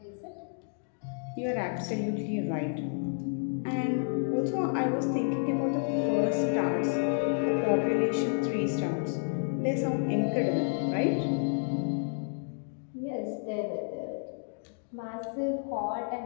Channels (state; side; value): silent; right; digital silence